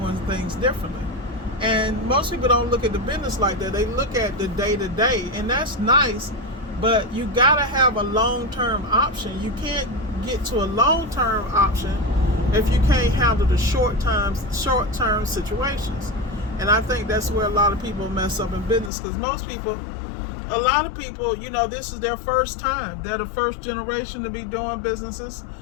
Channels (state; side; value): drops out; right; at 18.9 s